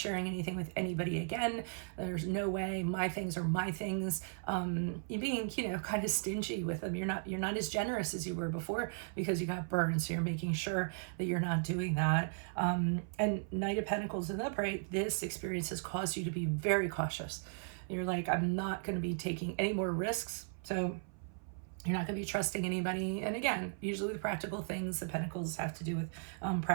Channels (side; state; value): left; silent; 53 dB below the other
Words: anything with anybody again. There's no way. My things are my things. You're being, kind of stingy with them. You're not as generous as you were before because you got burned. So you're making sure that you're not doing that. And Knight of Pentacles in the upright, this experience has caused you to be very cautious. You're like, I'm not going to be taking any more risks. So you're not going to be trusting anybody. And again, usually the practical things, the pentacles have to do with